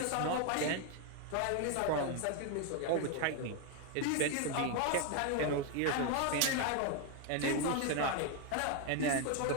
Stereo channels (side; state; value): both; different; correlation 0.01